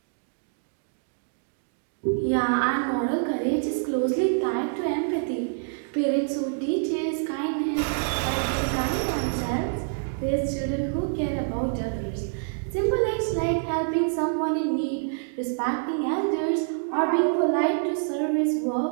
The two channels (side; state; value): left; silent; digital silence